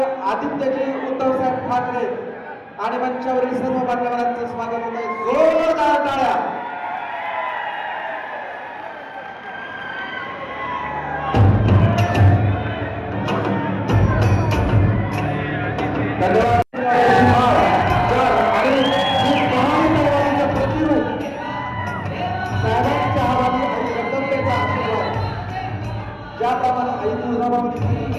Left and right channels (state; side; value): identical; both; correlation 1.00